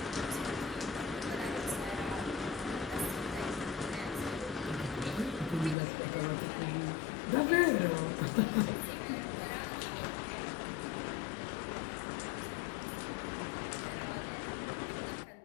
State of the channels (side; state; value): right; drops out; at 5.8 s